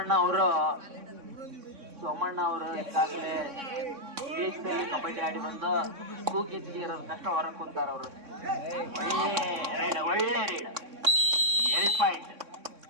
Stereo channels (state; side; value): late; left; 3.6 ms